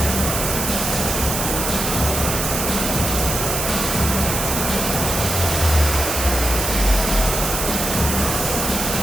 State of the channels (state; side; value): noise; right; hiss, 2 dB below the sound